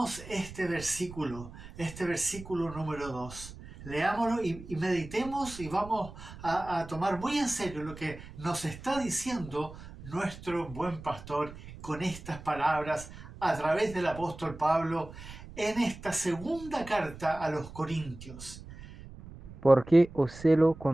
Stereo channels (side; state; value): right; noise; rumble, 15 dB below the sound